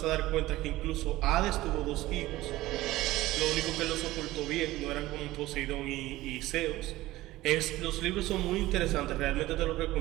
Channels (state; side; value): quieter; left; 17.2 dB